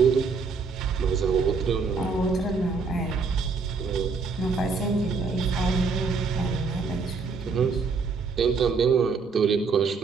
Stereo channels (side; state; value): left; quieter; 4.8 dB